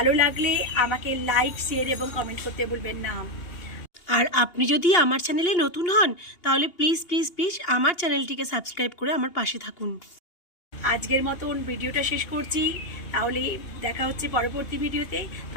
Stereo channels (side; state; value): right; late; 2.8 ms